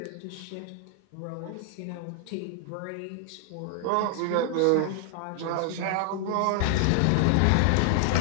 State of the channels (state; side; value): different; both; correlation 0.00